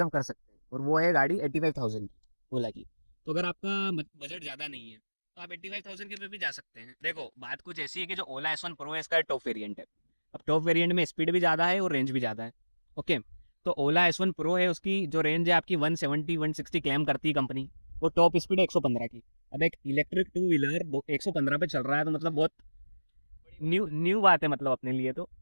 कर सकते हैं, और वो है गाड़ी 85,000 की ओला की। तो अगर आपका बजट ज़्यादा नहीं है तो आप 85,000 के पे भी जा सकते हैं। देखो बात कुछ ऐसी है कि जो ओला S1 Pro है इसका टॉप वेरिएंट है। अब टॉप वेरिएंट में स्पीड भी ज़्यादा है और रेंज भी ज़्यादा है। ओके, तो ओला S1 Pro है, उसकी जो रेंज है आपकी 170 160 क्लेम करती है कंपनी, वो टॉप स्पीड है 115 की। अब एक इलेक्ट्रिक टू व्हीलर 115 पे चल रहा है तो मतलब बहुत न्यू न्यू बात है मतलब अपने लिए तो।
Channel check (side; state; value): both; inverted; correlation -1.00